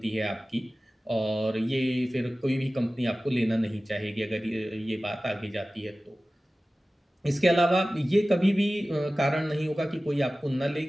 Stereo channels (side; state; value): both; normal; correlation 0.97